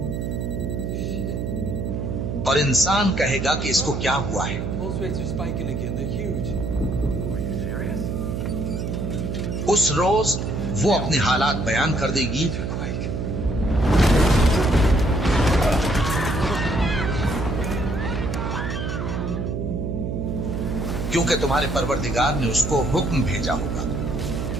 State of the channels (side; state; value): right; noise; hum, 3 dB below the sound